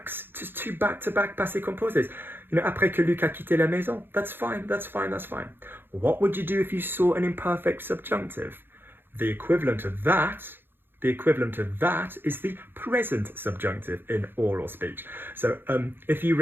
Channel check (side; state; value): left; late; 0.10 ms